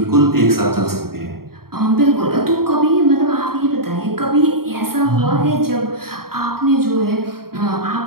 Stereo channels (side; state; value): left; late; 0.93 ms